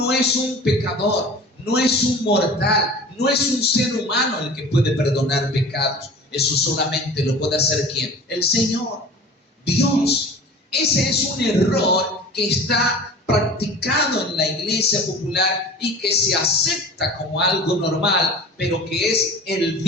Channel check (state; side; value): normal; both; correlation 0.40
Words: es un pecador, no es un mortal, no es un ser humano el que puede perdonar pecados. Eso solamente lo puede hacer ¿quién? El Señor, Dios. Ese es un error que está practicado en la iglesia popular y que se acepta como algo normal, pero que es el